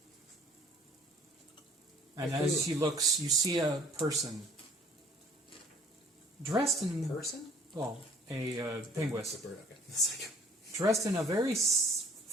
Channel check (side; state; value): both; normal; correlation 0.56